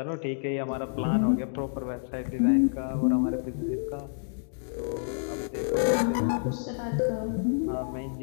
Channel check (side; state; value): right; silent; digital silence